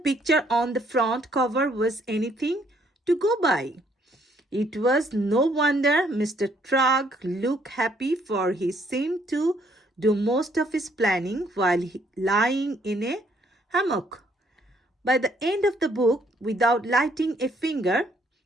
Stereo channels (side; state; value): both; normal; correlation 0.67